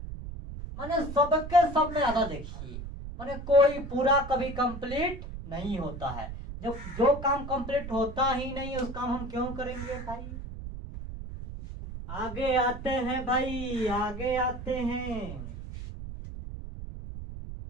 माने सबके सब में आधा। देखिए माने कोई पूरा कभी कंप्लीट नहीं होता है, जब जो काम कंप्लीट होता ही नहीं उस काम हम क्यों करेंगे भाई। आगे आते हैं भाई, आगे आते हैं,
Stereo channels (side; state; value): right; noise; rumble, 9 dB below the sound